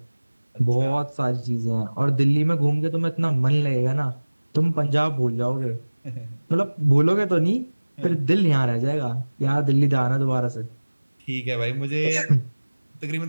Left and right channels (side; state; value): both; inverted; correlation -1.00